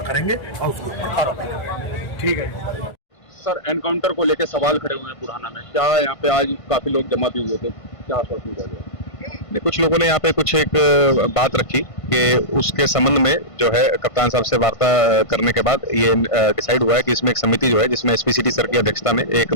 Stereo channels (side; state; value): right; late; 1.5 ms